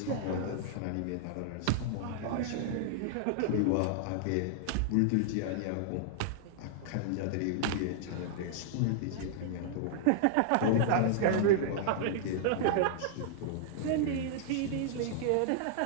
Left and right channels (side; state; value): both; different; correlation -0.01